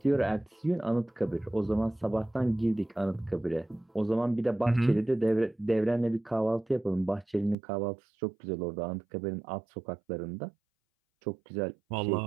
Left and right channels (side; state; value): left; drops out; at 7.6 s